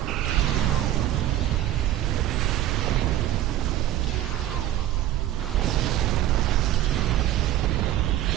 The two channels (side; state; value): left; quieter; 13.1 dB